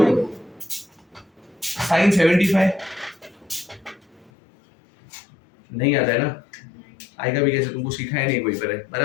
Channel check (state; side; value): drops out; right; at 4.3 s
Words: sin 75? नहीं आता है ना? आएगा भी कैसे? तुमको सिखाया नहीं कोई पर,